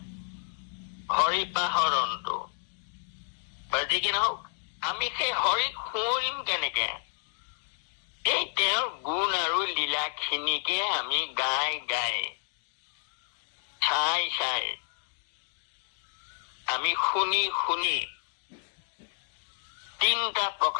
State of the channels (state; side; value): silent; right; 58 dB below the other